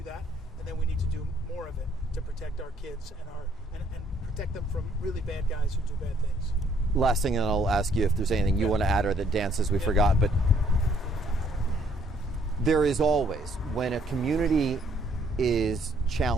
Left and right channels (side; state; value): both; normal; correlation 0.66